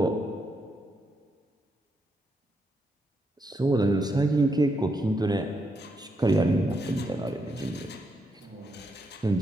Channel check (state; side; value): normal; both; correlation 0.80